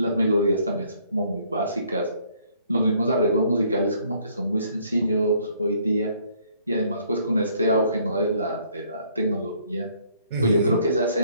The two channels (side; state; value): both; inverted; correlation -0.64